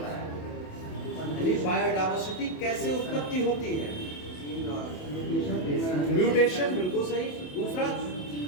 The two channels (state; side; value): late; right; 28 ms